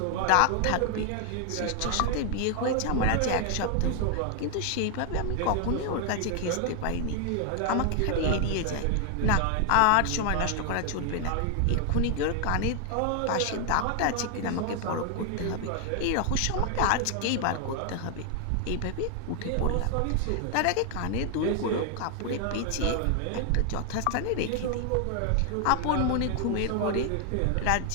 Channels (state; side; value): different; both; correlation 0.00